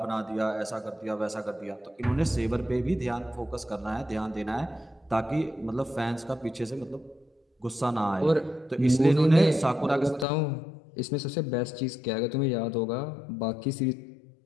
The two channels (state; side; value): drops out; right; at 10.2 s